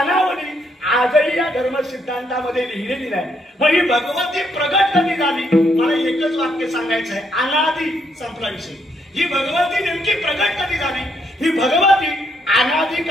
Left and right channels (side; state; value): both; normal; correlation 0.74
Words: आजही या धर्म सिद्धांतामध्ये लिहिलेली नाही. मग ही भगवती प्रगट कधी झाली, मला एकच वाक्य सांगायचं आहे, अनादी संपला विषय. ही भगवती नेमकी प्रगट कधी झाली, ही भगवती अनादी